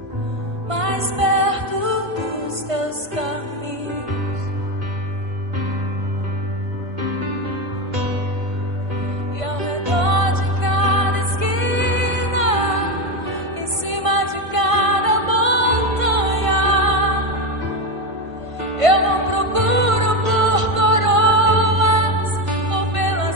mais perto dos teus caminhos. E ao redor de cada esquina, em cima de cada montanha, eu não procuro por coroas ou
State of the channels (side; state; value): left; late; 1.5 ms